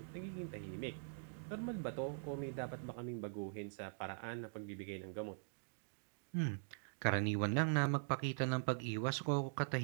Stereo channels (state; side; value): silent; left; digital silence